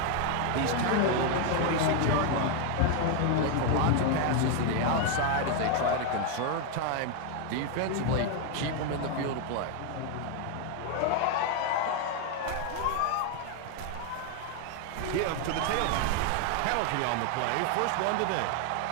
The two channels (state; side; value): different; both; correlation 0.01